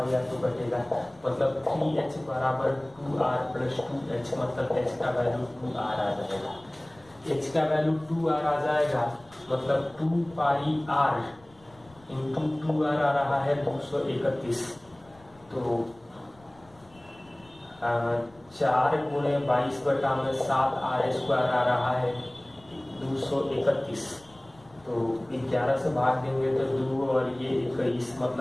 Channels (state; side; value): noise; left; rumble, 27 dB below the sound